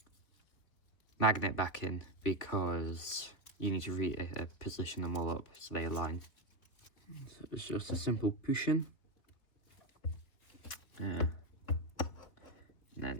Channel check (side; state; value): right; late; 3.4 ms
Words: magnet back in, because you need to reposition them all up so they align. So it's just a simple pushing. And